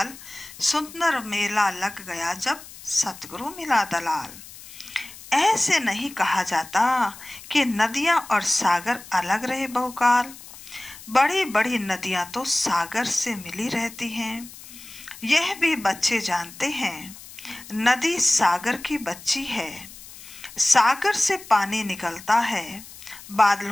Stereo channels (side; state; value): left; noise; hiss, 17 dB below the sound